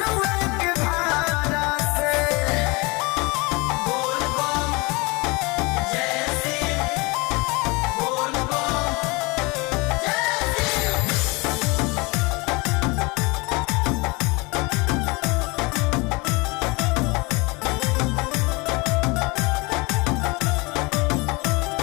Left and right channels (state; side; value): quieter; right; 26.3 dB